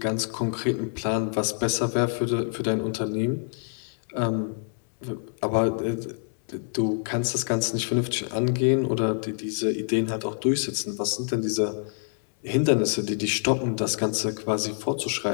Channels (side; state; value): right; silent; digital silence